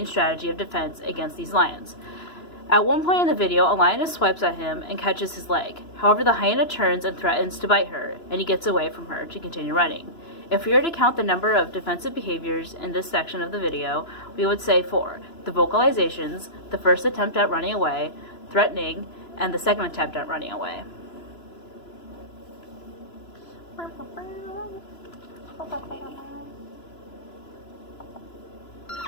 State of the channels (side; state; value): right; late; 2.9 ms